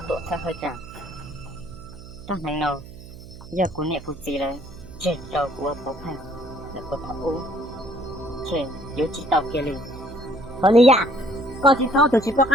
多才会讲。当然了，giờ của nè của chị là trên đầu của bố phèn là của thằng u trên yếu chỉ tàu kia liền còn đi à con chỉ sau từ chỉ có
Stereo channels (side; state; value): right; noise; hum, 16 dB below the sound